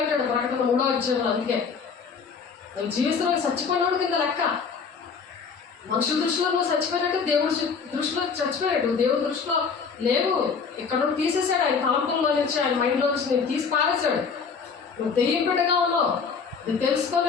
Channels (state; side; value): quieter; right; 5.7 dB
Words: ప్రకటన 3వ అధ్యాయంలో. అందుకే నువ్వు జీవిస్తున్నావు చచ్చిపోయినాడు కింద లెక్క. మనుషుల దృష్టిలో నువ్వు చచ్చిపోయినట్టు, దేవుడి దృష్టిలో చచ్చిపోయాడు. దేవుడి దృష్టిలో లేవు. ఇక్కడ నుండి తీసేసాడు ఆయన తలంపుల్లో నుంచి, ఆయన మైండ్లో నుంచి నేను తీసి పారేశాడు. నువ్వు దెయ్యం బిడ్డగా ఉన్నావు. నువ్వు